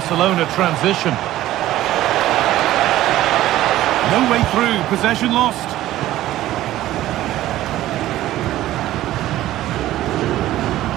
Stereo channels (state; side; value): quieter; left; 14.6 dB